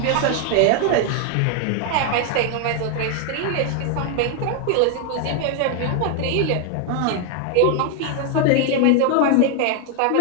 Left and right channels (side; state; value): both; different; correlation 0.00